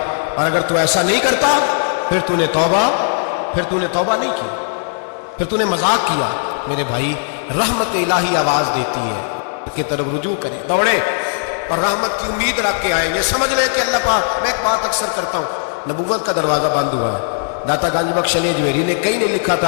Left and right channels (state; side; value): silent; right; digital silence